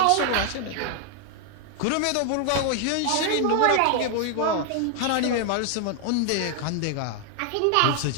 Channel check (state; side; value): different; both; correlation 0.00